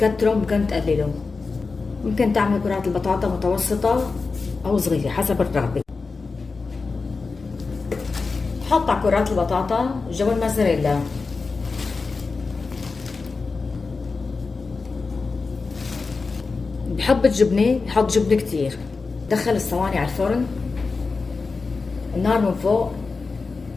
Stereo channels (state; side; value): quieter; right; 4.3 dB